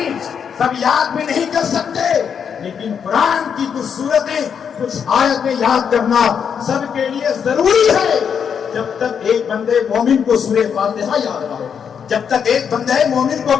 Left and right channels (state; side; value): quieter; right; 7.3 dB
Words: سب یاد بھی نہیں کر سکتے, لیکن قرآن کی کچھ صورتیں کچھ آیتیں یاد کرنا سب کے لیے ضروری ہے. جب تک ایک بندے مومن کو سورہ فاتحہ یاد نہ ہو, جب تک ایک بندے مومن